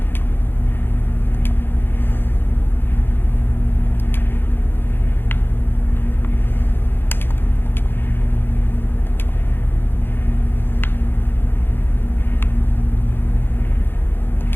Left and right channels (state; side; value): late; right; 0.10 ms